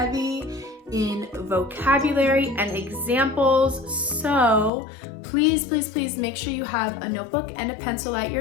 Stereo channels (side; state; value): right; drops out; at 4.7 s